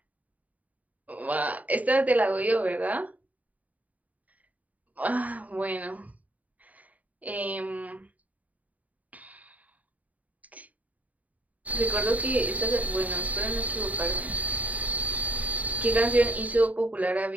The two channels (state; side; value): late; left; 0.073 ms